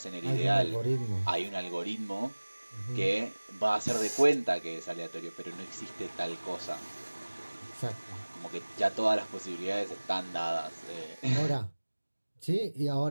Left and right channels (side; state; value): both; inverted; correlation -1.00